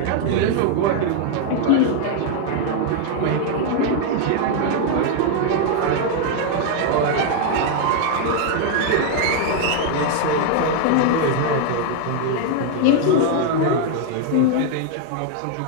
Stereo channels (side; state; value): both; different; correlation 0.00